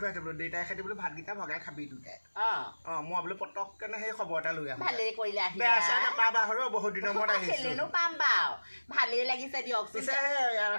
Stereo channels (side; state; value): both; inverted; correlation -1.00